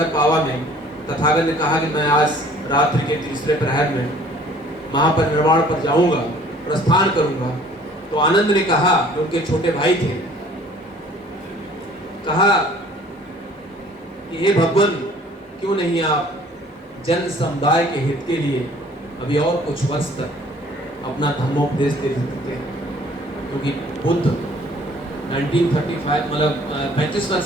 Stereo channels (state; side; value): normal; both; correlation 0.54